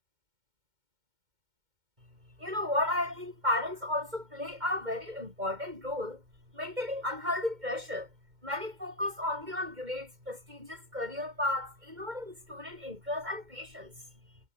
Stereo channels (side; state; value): left; late; 2.1 ms